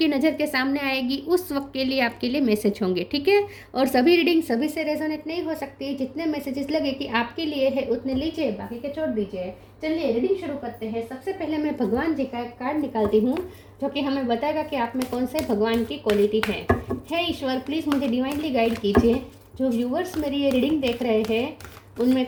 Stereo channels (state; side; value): identical; both; correlation 1.00